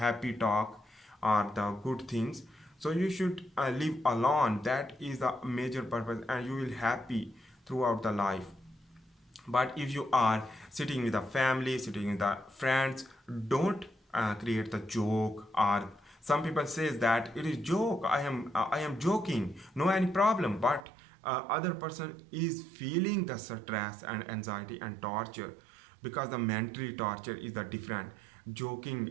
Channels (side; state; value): left; drops out; at 20.9 s